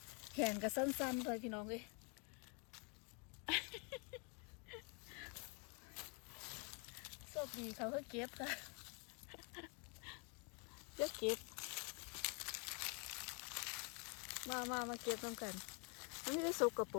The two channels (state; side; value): quieter; right; 34.8 dB